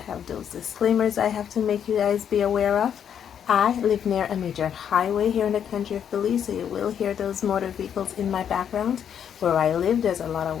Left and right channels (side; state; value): right; quieter; 8.6 dB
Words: have those disclaimers I have to make you guys be aware of. I live near a major highway here in the country of Belize, so you will hear those motor vehicles in my background. Where I live, there's a lot of